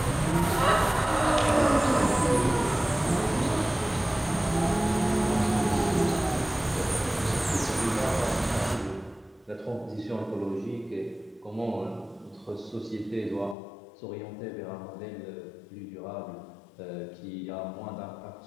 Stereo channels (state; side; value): drops out; right; at 13.6 s